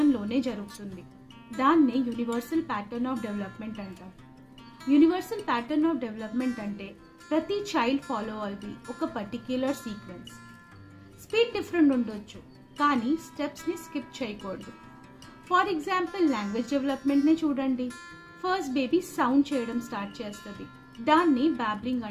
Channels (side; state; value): both; identical; correlation 1.00